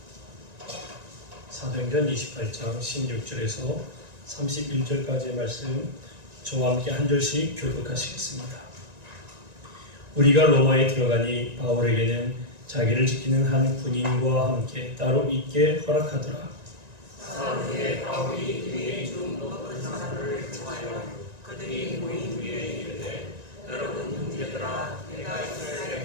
사도행전 28장 16절에서 31절까지의 말씀 저와 함께 한 절씩 교독하시겠습니다. 우리가 로마에 들어가니 바울에게는 자기를 지키는 한 군인과 함께 따로 있게 허락하더라. 사울의 바울이 유대인 중 높은 사람들을 청하여 그들이 모인 위에 이르되 여러분 형제들아 내가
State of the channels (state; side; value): late; left; 1.9 ms